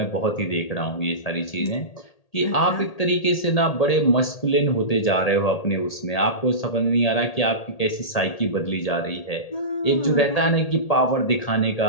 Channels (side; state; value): right; late; 1.8 ms